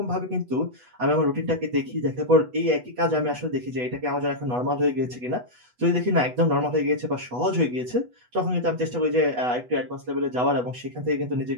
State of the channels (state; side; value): late; left; 8.1 ms